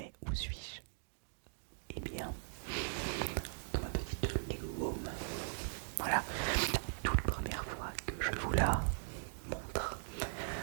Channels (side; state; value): left; silent; digital silence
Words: Où suis-je? Eh bien, dans ma petite Lego Home. Voilà, toute première fois que je vous la montre.